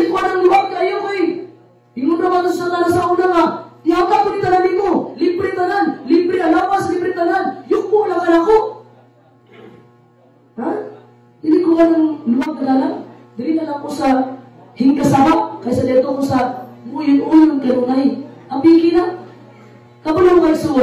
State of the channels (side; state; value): both; identical; correlation 1.00